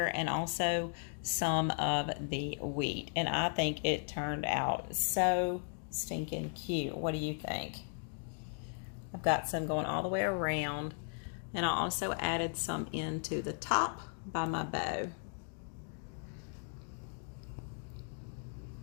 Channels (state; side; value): silent; right; 53 dB below the other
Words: and also some of the wheat. And I think it turned out so stinking cute. What do you think? I've got some going all the way around, and I also added some into the top by my bow.